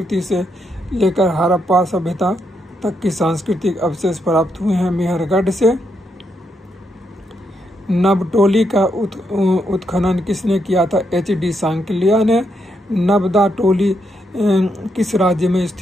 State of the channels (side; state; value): both; normal; correlation 0.80